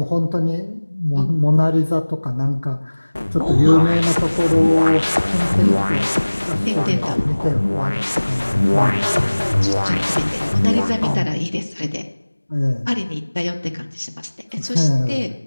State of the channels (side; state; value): both; inverted; correlation -1.00